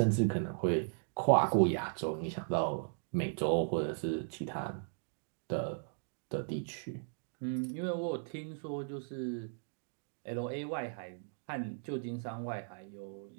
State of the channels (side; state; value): left; silent; digital silence